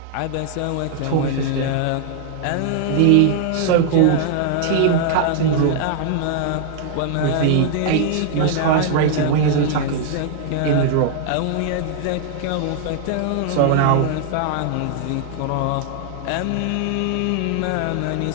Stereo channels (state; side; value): different; both; correlation -0.01